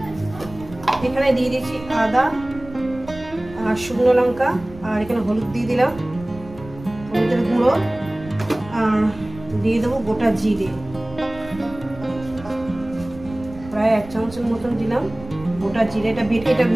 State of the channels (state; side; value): noise; right; rumble, 17 dB below the sound